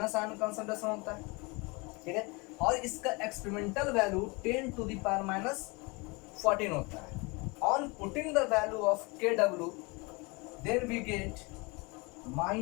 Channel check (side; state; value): right; quieter; 27.7 dB